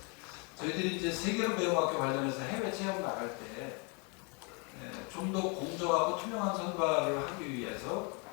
저희들이 이제 세계로 배움 학교 관련해서 해외 체험 나갈 때 좀 더 공정하고 투명한 선발을 하기 위해서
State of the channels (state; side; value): quieter; right; 33.5 dB